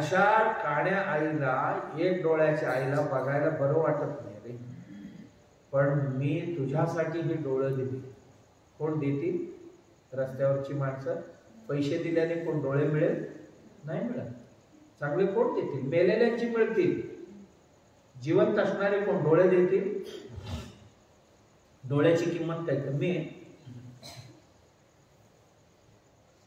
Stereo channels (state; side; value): identical; both; correlation 1.00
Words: काण्या आईला, एक डोळ्याच्या आईला बघायला बरं वाटत नाही रे, पण मी तुझ्यासाठी ही डोळं दिली. कोण देतील? रस्त्यावरची माणसं. पैसे दिल्याने कोण डोळे मिळेल? नाही मिळत. चांगले कोण देतील? मेलेल्यांची मिळतील. जिवंत असणारे कोण डोळे देतील? डोळ्याची किंमत काय कमी आहे?